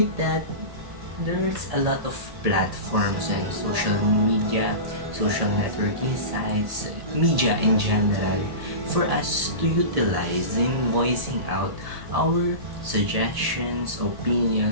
that, there's a lot of platforms and social media, social networking sites, media in general, for us to utilize in voicing out our suggestions,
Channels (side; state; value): left; late; 1.7 ms